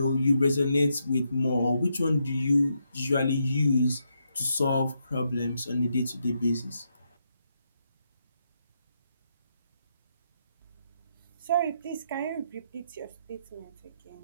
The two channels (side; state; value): both; inverted; correlation -0.80